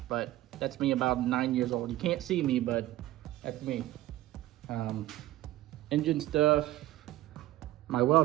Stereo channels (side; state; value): left; quieter; 15.6 dB